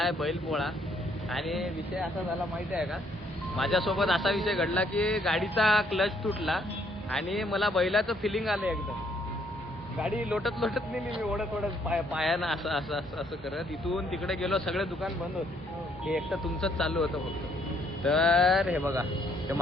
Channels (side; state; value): both; normal; correlation 0.68